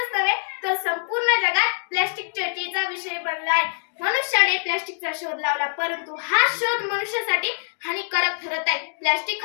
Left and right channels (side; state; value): right; silent; digital silence